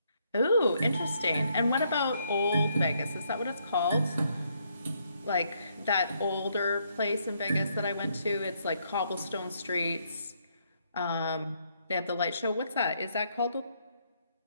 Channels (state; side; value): inverted; both; correlation -0.73